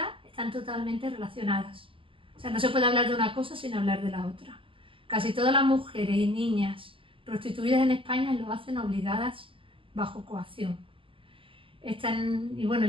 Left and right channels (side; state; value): left; late; 0.25 ms